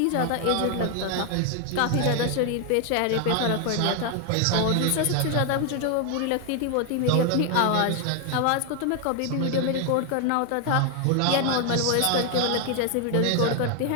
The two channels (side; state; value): both; different; correlation 0.01